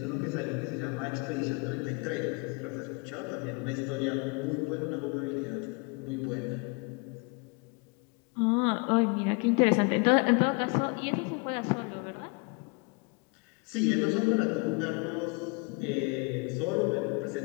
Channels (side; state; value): right; quieter; 30.9 dB